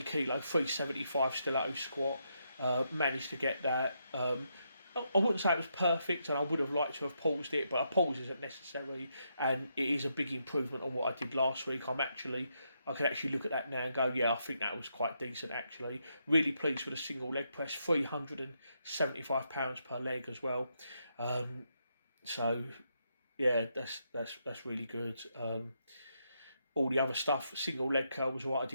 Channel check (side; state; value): both; inverted; correlation -0.80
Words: kilo, 375 stiletto squat, managed to get that. I wouldn't say it was perfect, and I would have liked to have paused it, but a pause isn't necessary, and it is a big improvement on what I did last week. I can actually look at that now and go, yeah, I think that was quite decent, actually. Really pleased with a single leg press, £375 per leg as well. So yeah, that's really good. All the other stuff, single leg curl was what I